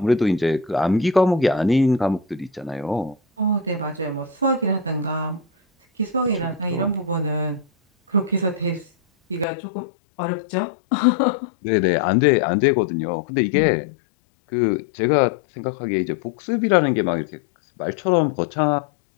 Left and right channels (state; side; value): drops out; right; at 9.5 s